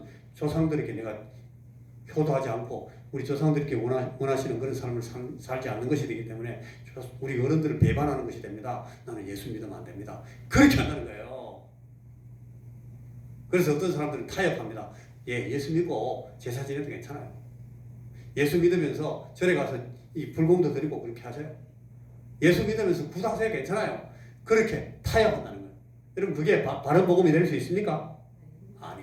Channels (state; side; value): identical; both; correlation 1.00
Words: 조상들에게 내가 효도하지 않고 우리 조상들께 원하시는 그런 삶을 살지 않는 것이 되기 때문에 우리 어른들을 배반하는 것이 됩니다. 나는 예수 믿으면 안 됩니다. 그렇게 한다는 거예요. 그래서 어떤 사람들은 타협합니다. 예수 믿고 제사 지내도 괜찮아요. 예수 믿으면서 절에 가서 이 불공도 드리고 그렇게 하세요. 예수 믿으면서 구사하세요. 괜찮아요. 그렇게 타협한다는 거예요. 여러분, 그게 바른 복음이 될 수 있습니까?